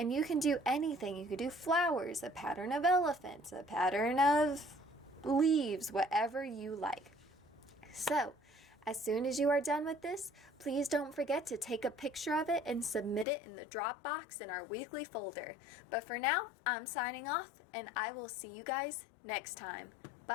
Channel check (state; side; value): drops out; right; at 13.2 s